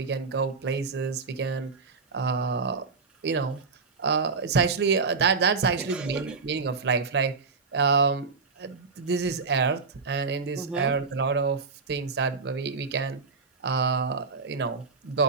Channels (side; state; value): left; quieter; 4.7 dB